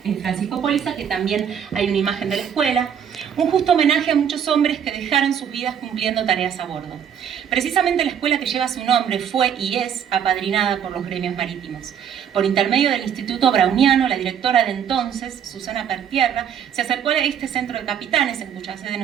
Póliza, que también hay una imagen de la escuela. Un justo homenaje a muchos hombres que dejaron sus vidas cumpliendo tareas a bordo. Precisamente la escuela que lleva su nombre fue y es apadrinada por los gremios marítimos. Por intermedio del Instituto Browniano, la directora de entonces, Susana Pertierra, se acercó a este centro de capitanes, en cuya sede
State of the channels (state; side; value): quieter; left; 8.4 dB